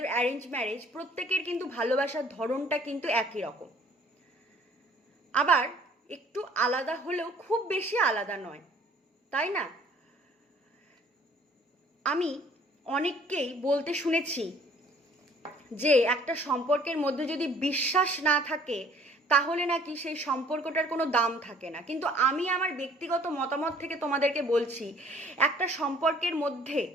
অ্যারেঞ্জ ম্যারেজ, প্রত্যেকের কিন্তু ভালোবাসার ধরনটা কিন্তু একই রকম। আবার একটু আলাদা হলেও খুব বেশি আলাদা নয়, তাই না? আমি অনেককেই বলতে শুনেছি যে একটা সম্পর্কের মধ্যে যদি বিশ্বাস না থাকে তাহলে নাকি সেই সম্পর্কটার কোনো দাম থাকে না। কিন্তু আমি আমার ব্যক্তিগত মতামত থেকে তোমাদেরকে বলছি, একটা সম্পর্কের মধ্যে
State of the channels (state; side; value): normal; both; correlation 0.56